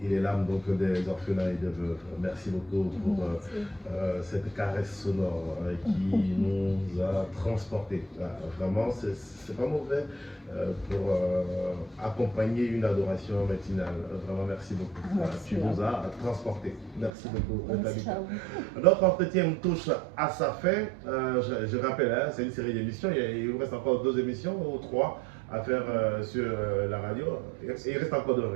les larmes donc, des orphelins et des veuves. Merci beaucoup pour cette caresse sonore qui nous a transportés. Vraiment, c'est pas mauvais pour accompagner une adoration matinale. Vraiment, merci beaucoup. Merci. Tu nous as transportés. Merci beaucoup. Merci à vous. Notre entretien touche à sa fin. Je rappelle, hein, c'est une série d'émissions. Il vous reste encore 2 émissions ou 3 à faire sur la radio. Il reste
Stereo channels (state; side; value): drops out; left; at 17.1 s